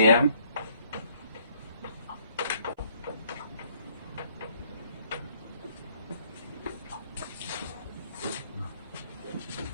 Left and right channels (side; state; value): both; inverted; correlation -0.64